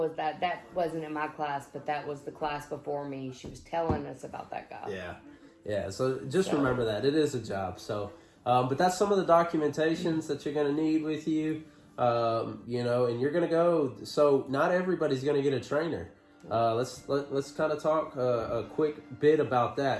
that wasn't in my class, but that was the class before me. She was telling us about that guy. Yeah. So just remember that it is a job. So, but that's some of the documentations that you're going to need with you. And you're going to go. So not everybody's going to get a trainer. Let's kind of talk a quick bit about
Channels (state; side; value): identical; both; correlation 1.00